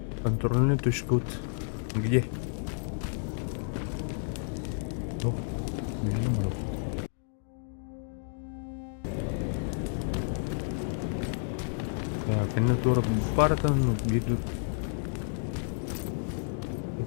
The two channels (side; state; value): right; silent; digital silence